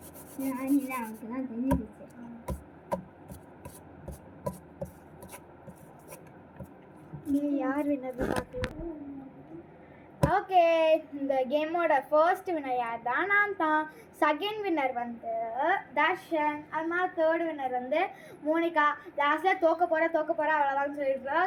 அவனுக்கு தான் தெரிஞ்சிருச்சு. நீ யார் வின்னர் பார்க்கலாம். ஓகே, இந்த கேமோட ஃபர்ஸ்ட் வின்னர் யார் தான்? நான் தான். செகண்ட் வின்னர் வந்து தர்ஷன். அது மாதிரி தேர்ட் வின்னர் வந்து மோனிகா. லாஸ்ட்டில் தோக்க போகிறா அவ்வளோதான் சொல்லிட்டு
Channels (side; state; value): both; identical; correlation 1.00